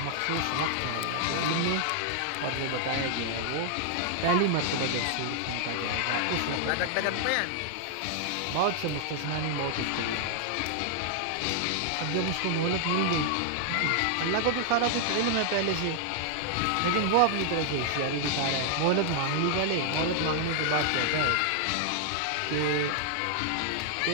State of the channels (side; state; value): both; different; correlation 0.00